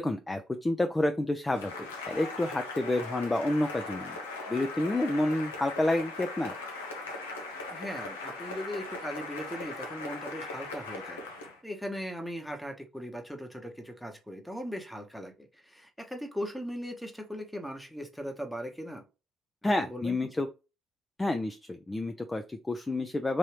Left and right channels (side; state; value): both; normal; correlation 0.87